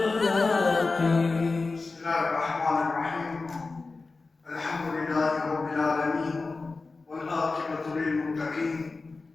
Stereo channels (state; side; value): quieter; right; 3.9 dB